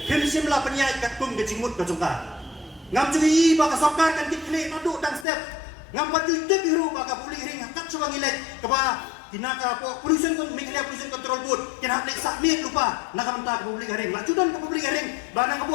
himsim la panyai kat kum ke jingmut ka jongka ngam cui ba ka sarkar kan dikle nadu dan step ngam patu te biru ba ka publik ring hakat suang ilai ka ba tinaka po pollution kon miklia pollution control board kin hak lek sakmit lupa na ka menta publik ring la judan ka publik ring ba na ka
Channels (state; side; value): drops out; right; at 5.2 s